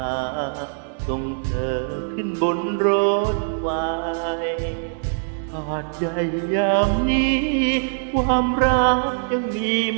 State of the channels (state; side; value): silent; left; digital silence